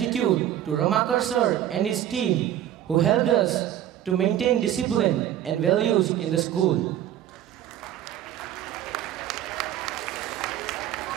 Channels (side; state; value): left; quieter; 11.6 dB